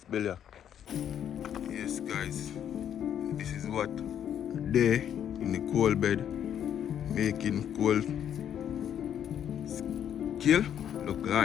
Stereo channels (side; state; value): right; quieter; 9.6 dB